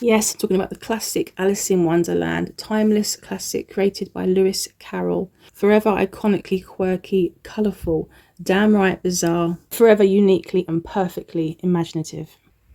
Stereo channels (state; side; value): identical; both; correlation 1.00